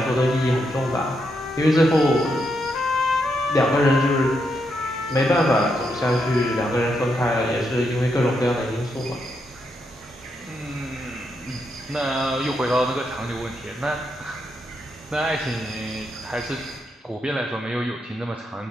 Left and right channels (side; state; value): both; normal; correlation 0.81